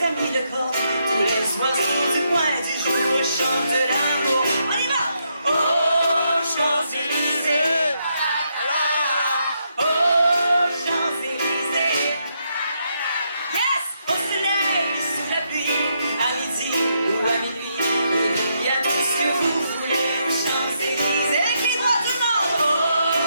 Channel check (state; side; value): inverted; both; correlation -0.78